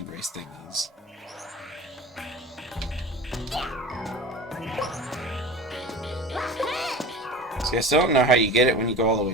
race thingies. See, I still don't know how you get it when you go all the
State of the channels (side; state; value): both; normal; correlation 0.35